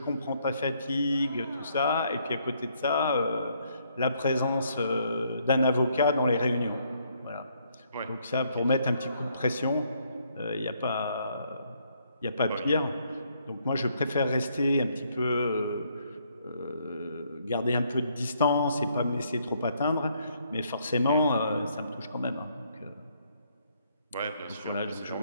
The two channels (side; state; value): both; inverted; correlation -0.70